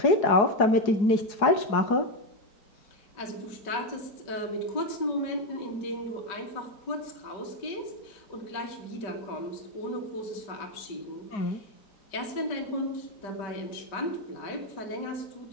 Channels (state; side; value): late; right; 5.1 ms